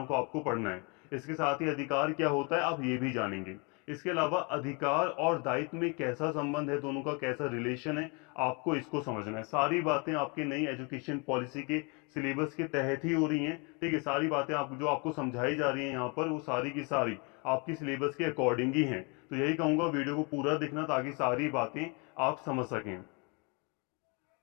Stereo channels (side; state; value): right; quieter; 31.9 dB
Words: को आपको पढ़ना है। इसके साथ ही अधिकार क्या होता है आप ये भी जानेंगे। इसके अलावा अधिकार और दायित्व में कैसा संबंध है, दोनों का कैसा रिलेशन है, आपको इसको समझना है। सारी बातें आपकी नई एजुकेशन पॉलिसी के सिलेबस के तहत ही हो रही हैं। ठीक है, सारी बातें आप जो आपको समझाई जा रही हैं यहाँ पर, वो सारी की सारी आपकी सिलेबस के अकॉर्डिंग ही हैं। तो यही कहूंगा, वीडियो को पूरा देखना ताकि सारी बातें आप समझ सकें।